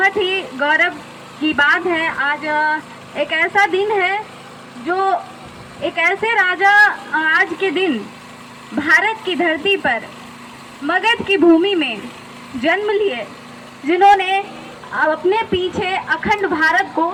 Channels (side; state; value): both; identical; correlation 1.00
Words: ही गौरव की बात है। आज एक ऐसा दिन है जो एक ऐसे राजा आज के दिन भारत की धरती पर मगध की भूमि में जन्म लिए, जिन्होंने अपने पीछे अखंड भारत को